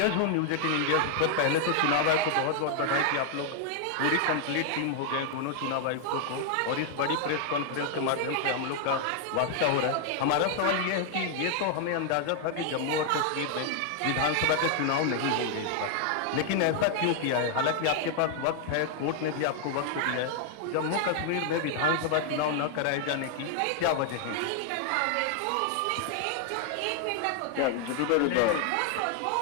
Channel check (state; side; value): different; both; correlation 0.00